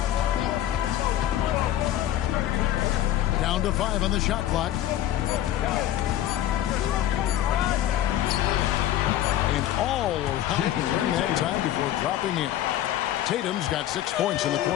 Down to 5 on the shot clock. And all around during that time before dropping in. Tatum's got 6 points in the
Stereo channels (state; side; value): quieter; right; 12.6 dB